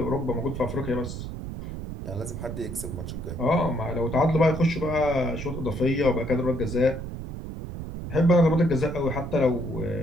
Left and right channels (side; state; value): right; noise; rumble, 7 dB below the sound